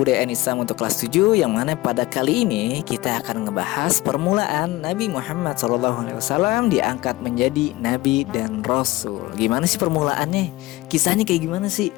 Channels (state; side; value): quieter; right; 19.3 dB